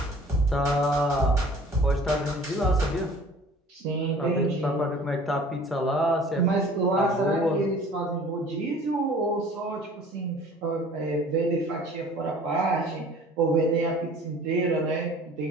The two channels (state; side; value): normal; both; correlation 0.48